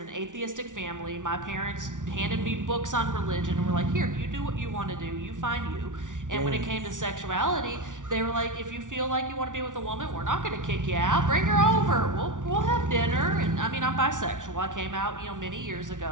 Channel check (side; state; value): left; late; 0.87 ms